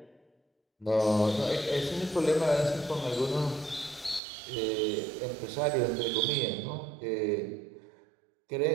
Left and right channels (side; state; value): left; drops out; at 4.2 s